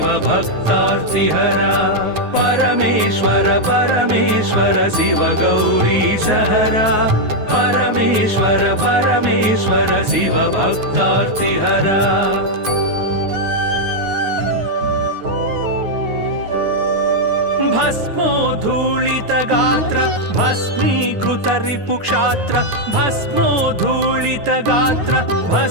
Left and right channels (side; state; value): left; late; 9.5 ms